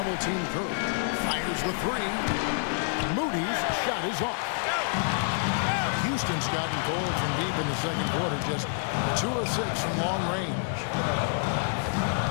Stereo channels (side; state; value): right; silent; 59 dB below the other